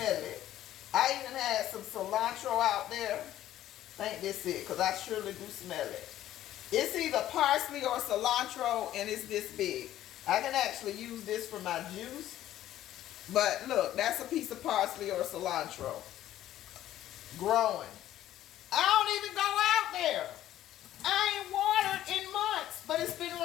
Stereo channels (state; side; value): quieter; right; 13.0 dB